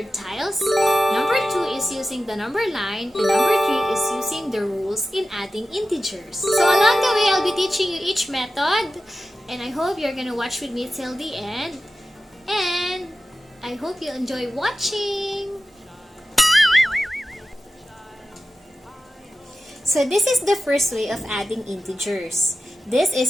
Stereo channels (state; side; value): normal; both; correlation 0.94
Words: tiles. Number two is using the number line. And number three is using the rules in adding integers. So along the way, I'll be teaching you each method. And I hope you're gonna watch with me till the end. And I hope you enjoy watching. So this is the first way of adding integers. This